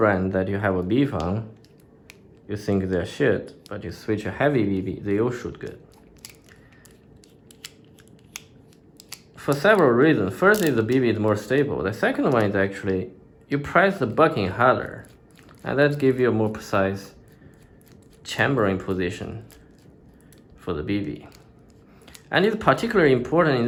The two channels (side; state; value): both; identical; correlation 1.00